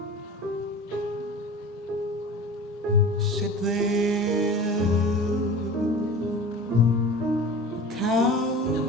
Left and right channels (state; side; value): normal; both; correlation 0.36